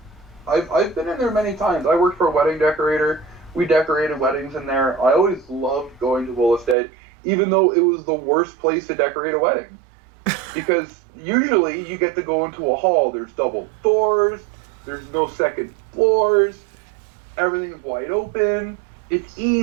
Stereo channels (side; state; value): left; drops out; at 6.8 s